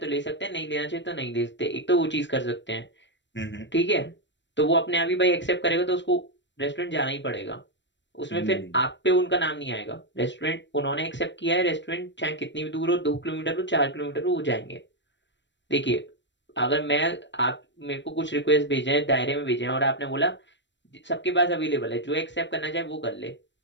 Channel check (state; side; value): late; right; 0.53 ms